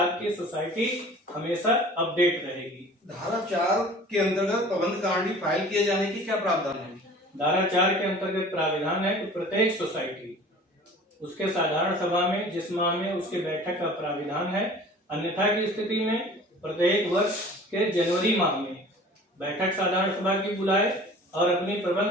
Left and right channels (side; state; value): both; normal; correlation 0.45